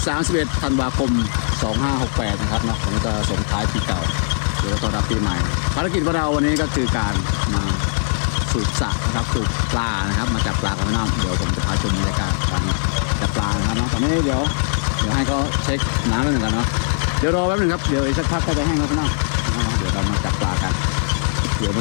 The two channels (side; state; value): right; silent; digital silence